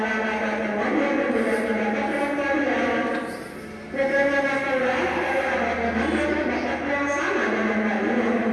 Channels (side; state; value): both; identical; correlation 1.00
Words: ada teman yang berbeda pendapat dengan kalian? Bagaimana pula kalau ada teman yang berpendapat yang sama dengan